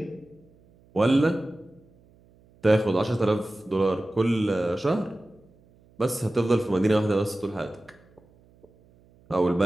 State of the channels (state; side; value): noise; right; hum, 30 dB below the sound